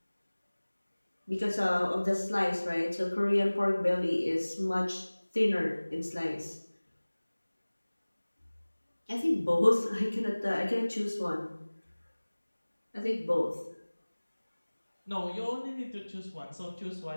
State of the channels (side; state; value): both; inverted; correlation -1.00